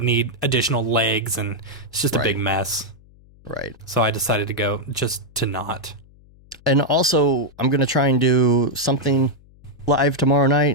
need additional legs, and it's just a big mess. Right. So I decided to go just to not. And also, I'm going to try and do something live tomorrow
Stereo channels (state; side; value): noise; left; hum, 26 dB below the sound